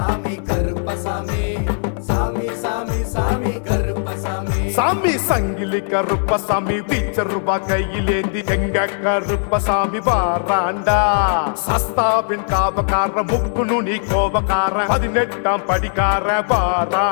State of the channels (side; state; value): right; silent; 67 dB below the other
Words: கருப்பசாமி சாமி சாமி சாமி கருப்பசாமி சாமி சங்கிலி கருப்பசாமி பீச்சருபா கையிலேந்தி எங்க கருப்பசாமி வாராண்டா சஸ்தாவின் காவக்கார முக்கு நுனி கோபக்கார 18ஆம் படிக்கார